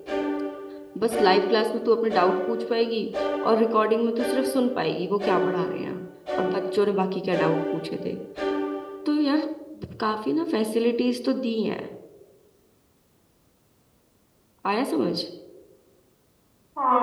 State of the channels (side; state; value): both; identical; correlation 1.00